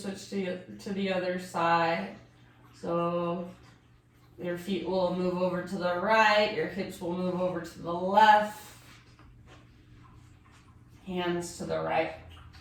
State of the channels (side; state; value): both; identical; correlation 1.00